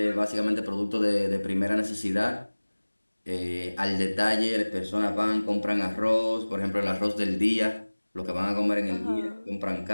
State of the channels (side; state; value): both; inverted; correlation -1.00